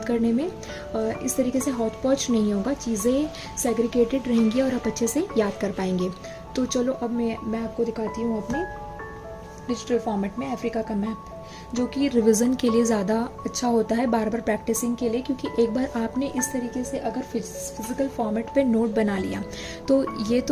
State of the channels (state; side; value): identical; both; correlation 1.00